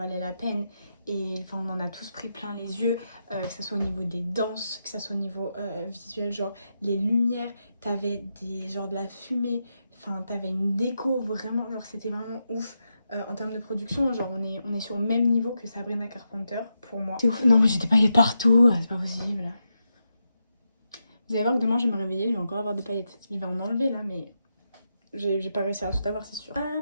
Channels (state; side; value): inverted; both; correlation -0.86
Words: la peine. Et enfin on en a tous pris plein les yeux, que ça soit au niveau des danses, que ça soit au niveau visuel, genre les lumières, t'avais genre de la fumée, enfin t'avais une déco vraiment, genre c'était vraiment ouf. En termes de production, genre on est sur le même niveau que Sabrina Carpenter pour moi. C'est ouf. Non mais j'ai des paillettes partout, c'est pas possible. Vous allez voir que demain je vais me réveiller, je vais encore avoir des paillettes. Je vais en enlever là mais j'ai pas réussi à tout avoir, c'est sûr.